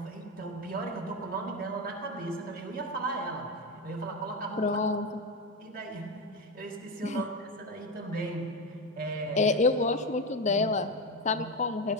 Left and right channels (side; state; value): both; normal; correlation 0.15